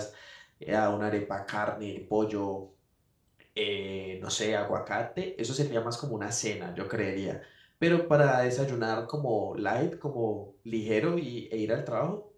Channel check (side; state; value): both; identical; correlation 1.00